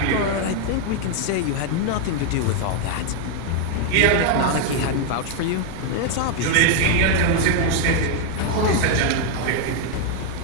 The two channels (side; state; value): both; different; correlation 0.00